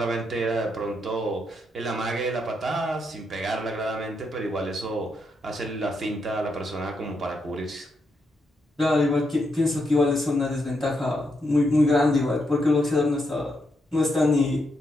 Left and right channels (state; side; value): normal; both; correlation 0.81